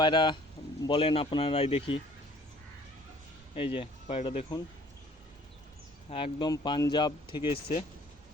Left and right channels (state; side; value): normal; both; correlation 0.55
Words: বলেন আপনারাই দেখি। এই যে পায়রাটা দেখুন, একদম পাঞ্জাব থেকে এসছে।